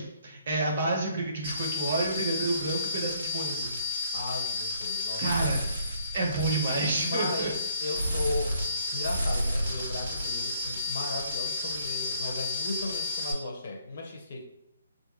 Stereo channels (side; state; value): both; inverted; correlation -0.63